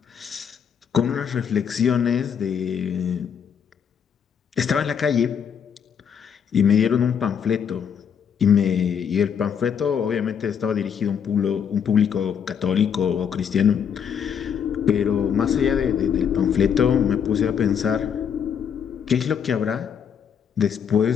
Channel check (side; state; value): right; quieter; 7.6 dB